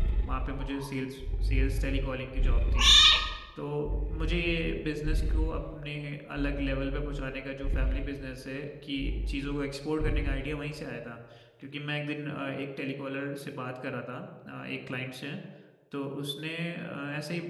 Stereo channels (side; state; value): both; identical; correlation 1.00